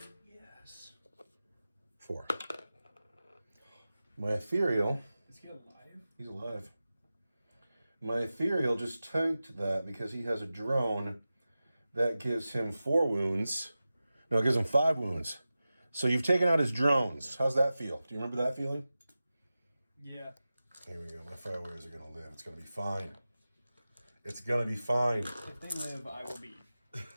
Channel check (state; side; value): inverted; both; correlation -0.95